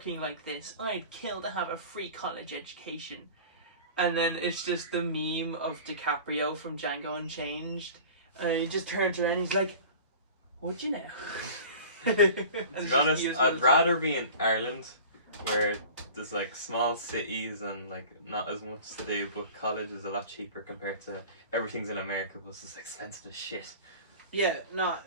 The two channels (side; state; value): both; inverted; correlation -0.40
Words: like this. I'd kill to have a free college education. And then it's just the meme of DiCaprio from Django Unchanged. And he just turns around and he's like, would you now? To be honest, I'd rather be in Ireland, where there's like small cities and like not as much to do, but college is a lot cheaper compared to everything's in America, but it's just expensive as shit. Yeah, no,